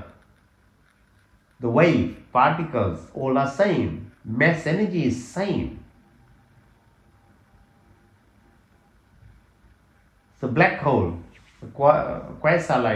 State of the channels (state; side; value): identical; both; correlation 1.00